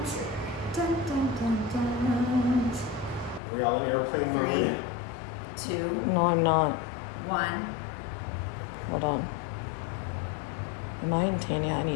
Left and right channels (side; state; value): right; drops out; at 3.4 s